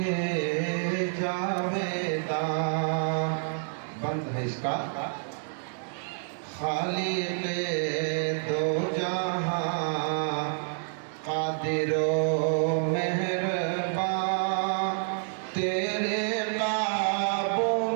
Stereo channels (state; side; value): silent; left; 59 dB below the other